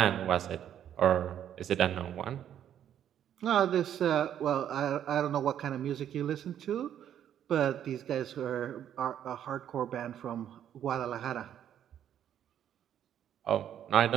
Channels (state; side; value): quieter; left; 10.1 dB